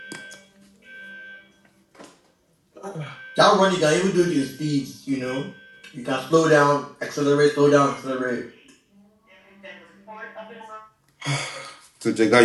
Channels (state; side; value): identical; both; correlation 1.00